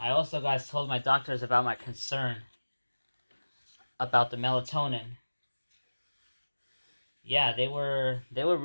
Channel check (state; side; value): inverted; both; correlation -1.00